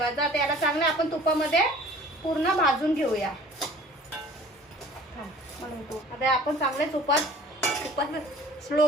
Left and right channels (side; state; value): both; normal; correlation 0.48